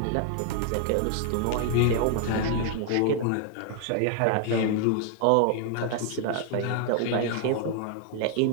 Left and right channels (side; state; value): both; different; correlation 0.00